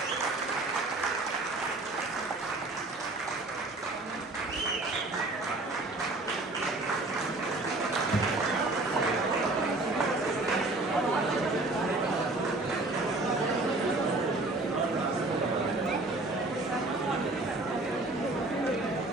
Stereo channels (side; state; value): left; quieter; 3.0 dB